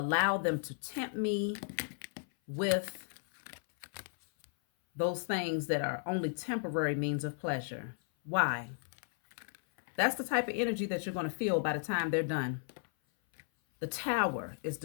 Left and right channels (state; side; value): silent; right; 55 dB below the other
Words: them to tempt me with those things that are only temporary means of pleasure? Why? That's the type of energy that you're going to feel by the time they're done. The Tower is